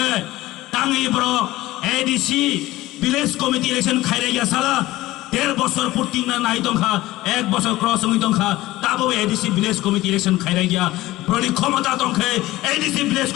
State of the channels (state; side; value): quieter; right; 17.4 dB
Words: টাঙ্গি ব্রক এডিসি ভিলেজ কমিটি ইলেকশন খাইরে গিয়া সালা 1.5 বছর পূর্তি না নাই দংখা 1 বছর ক্রস হই দংখা তাবো এডিসি ভিলেজ কমিটি ইলেকশন খাইরে গিয়া ব্রলি ক্ষমতা দংখে এডিসি ভিলেজ